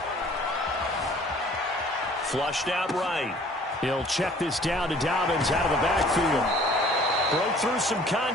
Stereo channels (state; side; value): normal; both; correlation 0.53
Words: Flushed out right. He'll check this down to Dobbins out of the backfield. Broke through some